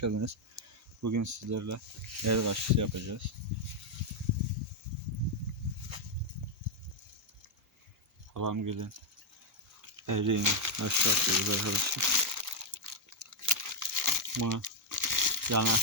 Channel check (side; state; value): both; normal; correlation -0.01